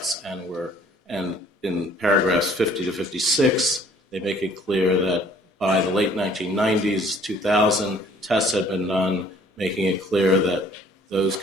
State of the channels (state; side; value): normal; both; correlation 0.57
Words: and in paragraphs 50 to 56, they make it clear that by the late 1990s, 2000, tests had been done, making it clear that those